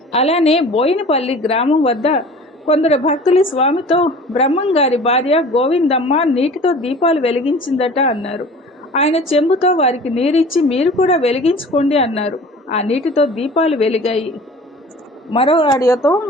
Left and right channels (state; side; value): normal; both; correlation 0.43